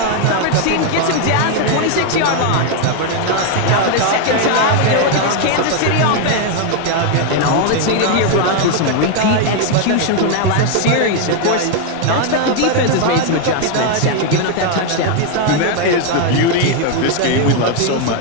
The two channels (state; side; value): different; both; correlation 0.01